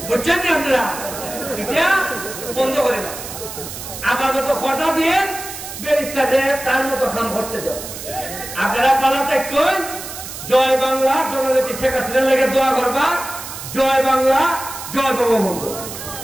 বুঝছেন না আপনারা, এটা বন্ধ করে না। আবার মতো কথা দিয়ে ব্যারিস্টারদের তার মতো কাম করতে দেয়। আপনারা পালাতে কই জয় বাংলা, জননেত্রী শেখ হাসিনার লেগে দোয়া করবা, জয় বাংলা, জয় বঙ্গবন্ধু।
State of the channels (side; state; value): right; noise; hiss, 10 dB below the sound